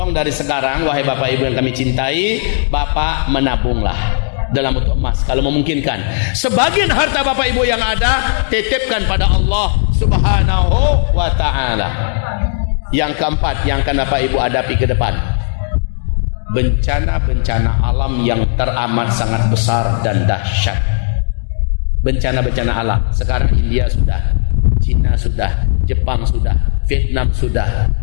dari sekarang, wahai Bapak Ibu yang kami cintai, Bapak menabunglah dalam bentuk emas kalau memungkinkan. Sebagian harta Bapak Ibu yang ada titipkan pada Allah Subhanahu wa ta'ala. Yang keempat yang akan Bapak Ibu hadapi ke depan, bencana-bencana alam yang teramat sangat besar dan dahsyat. Bencana-bencana alam. Sekarang India sudah, Cina sudah, Jepang sudah, Vietnam sudah,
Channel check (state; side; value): silent; right; digital silence